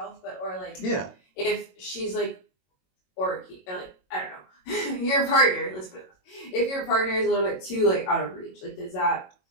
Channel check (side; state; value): right; late; 22 ms